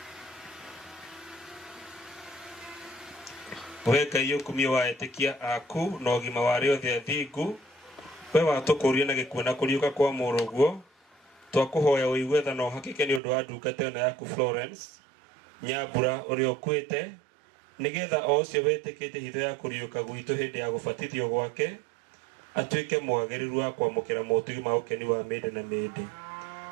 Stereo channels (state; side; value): drops out; left; at 13.2 s